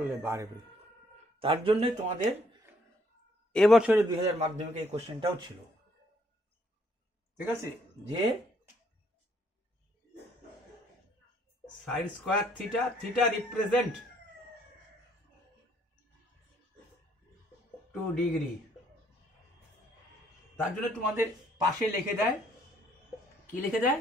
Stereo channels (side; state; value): both; normal; correlation 0.67